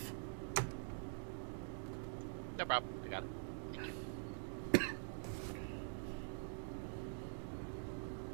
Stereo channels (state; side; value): silent; left; digital silence